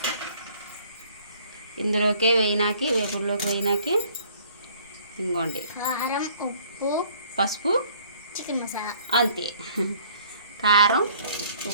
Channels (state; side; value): inverted; both; correlation -0.57